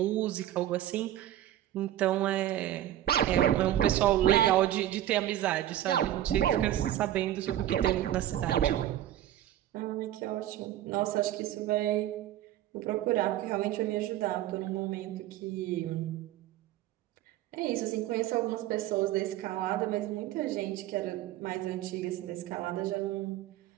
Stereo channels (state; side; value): quieter; left; 13.0 dB